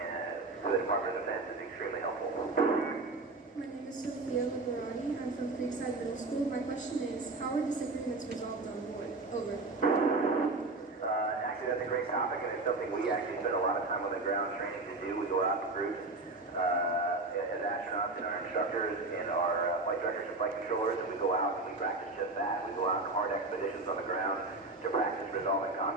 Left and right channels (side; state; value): left; quieter; 3.3 dB